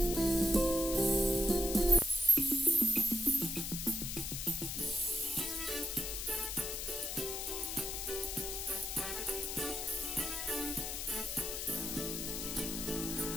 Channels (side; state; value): left; noise; hiss, 4 dB below the sound